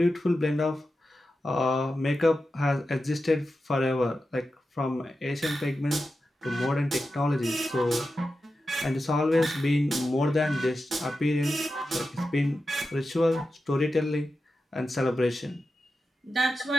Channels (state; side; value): normal; both; correlation 0.91